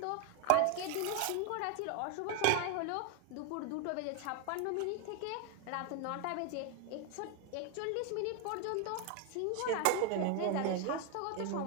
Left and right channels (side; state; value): both; different; correlation 0.01